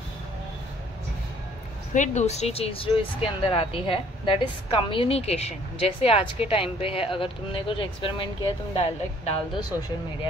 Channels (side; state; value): both; normal; correlation 0.59